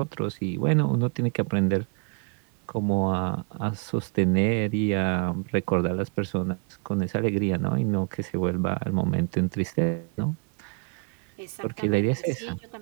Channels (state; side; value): quieter; left; 33.9 dB